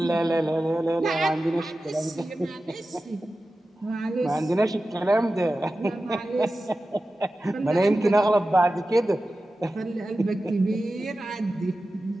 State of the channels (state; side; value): normal; both; correlation 0.94